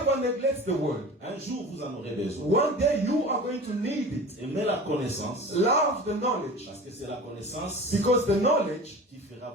neglect the word. Un jour, vous en aurez besoin. One day you are going to need it. Aimez la connaissance, Love the knowledge, parce que c'est la connaissance because the knowledge qui fera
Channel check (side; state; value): both; normal; correlation 0.37